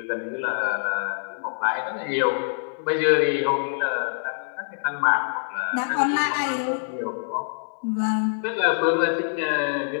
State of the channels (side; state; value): right; silent; 57 dB below the other